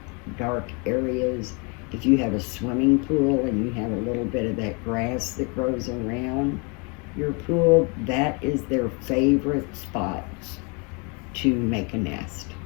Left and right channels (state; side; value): quieter; right; 32.8 dB